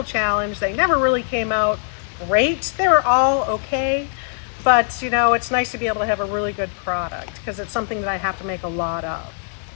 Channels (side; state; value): right; silent; 65 dB below the other